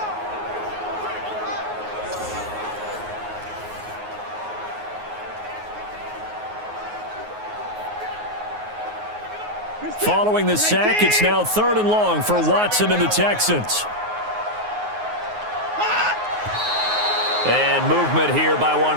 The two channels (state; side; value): late; left; 9.5 ms